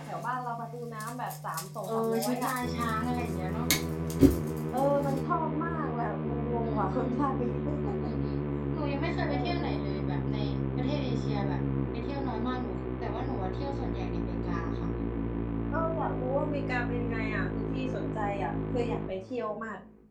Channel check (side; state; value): both; identical; correlation 1.00